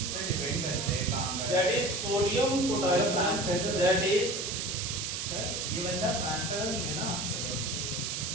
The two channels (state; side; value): noise; right; hiss, 3 dB below the sound